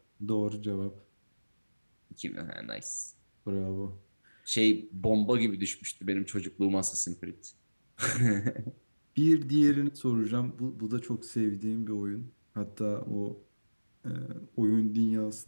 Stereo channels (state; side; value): inverted; both; correlation -1.00